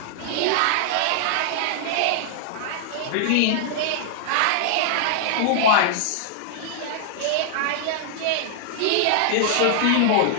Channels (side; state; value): both; different; correlation -0.01